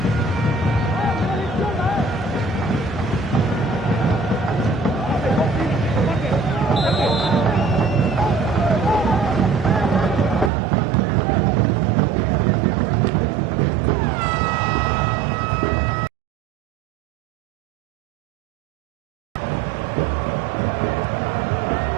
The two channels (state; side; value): drops out; left; at 10.5 s